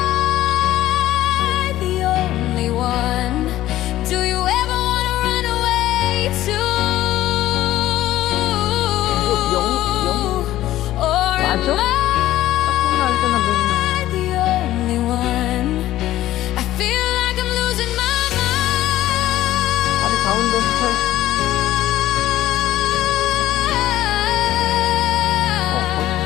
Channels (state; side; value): quieter; right; 14.4 dB